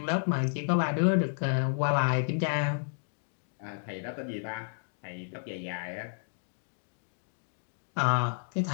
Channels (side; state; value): right; silent; digital silence